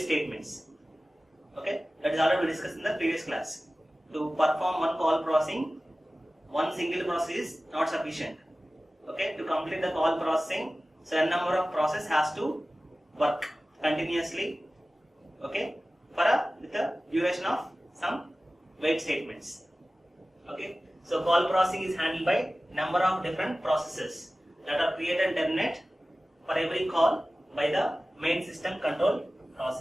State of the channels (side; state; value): both; normal; correlation 0.96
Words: Okay, that is already discussed in the previous class. To perform one call processing, one single process is not sufficient. Okay, to complete the call processing, so a number of process has to work continuously. Okay, with a duration of some wait statements. Okay, so call processing is handled by number of different processes that are created and terminate for every call by the main system control